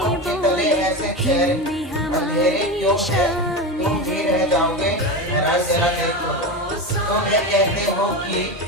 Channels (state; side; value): normal; both; correlation 0.21